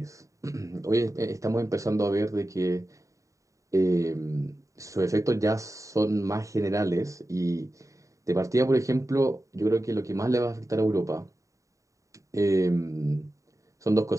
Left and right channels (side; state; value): left; late; 0.16 ms